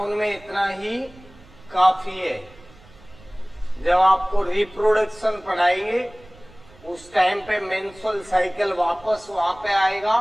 में इतना ही काफी है। जब आपको रिप्रोडक्शन पढ़ाएंगे उस टाइम पे मेंस्ट्रुअल साइकिल वापस वहां पे आएगा।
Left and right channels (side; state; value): right; noise; rumble, 24 dB below the sound